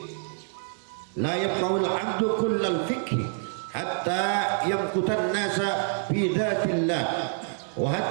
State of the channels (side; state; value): left; silent; 60 dB below the other